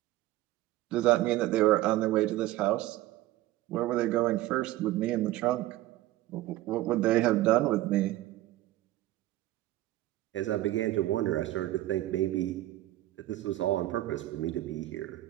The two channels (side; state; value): left; quieter; 15.9 dB